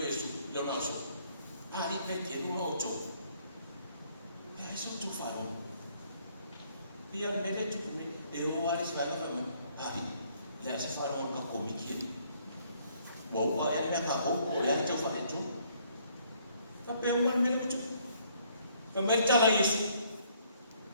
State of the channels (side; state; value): both; inverted; correlation -0.65